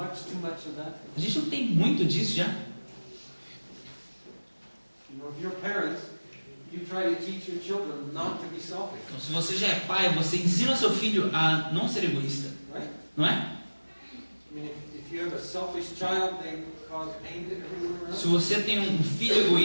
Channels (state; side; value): inverted; both; correlation -1.00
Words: much of that? A gente não tem muito disso já. If you're parents, you try to teach your children not to be selfish, Então, se você já é pai, você ensina seu filho a não ser egoísta, right? não é? If you have a selfish child, they cause pain to everyone around. Se você tem um filho